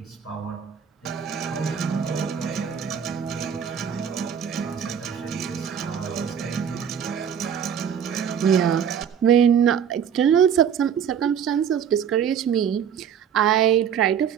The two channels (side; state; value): left; quieter; 8.1 dB